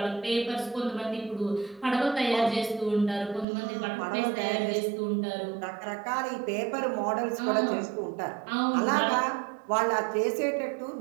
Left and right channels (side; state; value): left; drops out; at 3.5 s